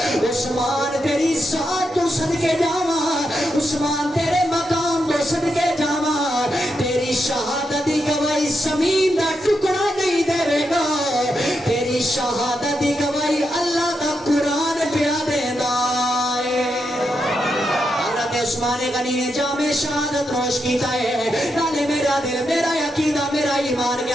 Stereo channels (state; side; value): normal; both; correlation 0.84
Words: عثمان تیری ذات تو صدقے جاواں، عثمان تیرے مقام تو صدقے جاواں، تیری شہادت دی گواہی زمین دا ٹکڑا نہیں دے گا، تیری شہادت دی گواہی اللہ دا قرآن پیا دیندا ہے۔ حضرت عثمان غنی نے جامع شہادت نوش کیتا ہے، نالے میرا دل میرا عقیدہ میرا ایمان